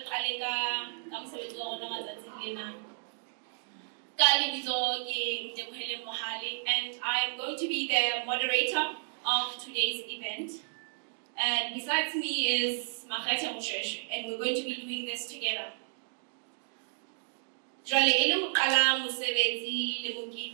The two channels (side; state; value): left; silent; digital silence